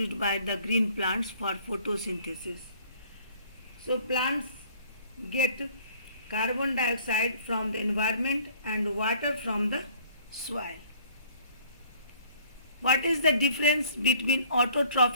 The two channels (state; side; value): inverted; both; correlation -0.55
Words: by the green plants for photosynthesis. So plants get carbon dioxide from the environment and water from the soil. What is the difference between